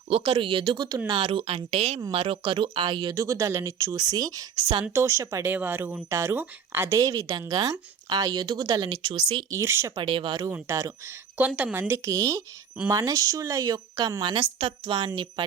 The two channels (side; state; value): left; quieter; 7.1 dB